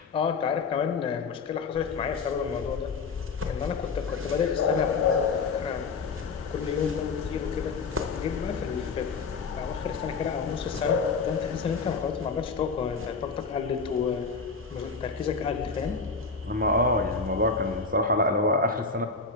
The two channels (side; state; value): right; quieter; 4.5 dB